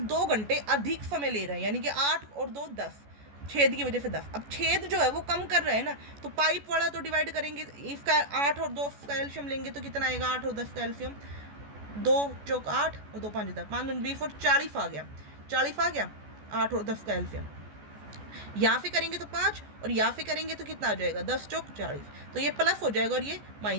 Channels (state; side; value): late; left; 14 ms